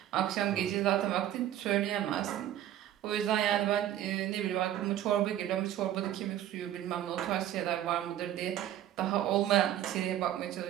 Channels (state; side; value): quieter; left; 12.0 dB